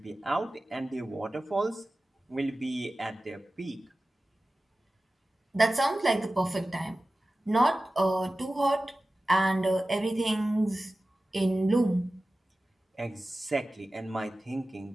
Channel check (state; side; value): normal; both; correlation 0.96